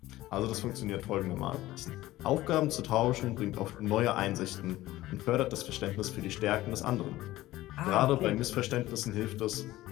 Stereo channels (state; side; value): quieter; right; 16.4 dB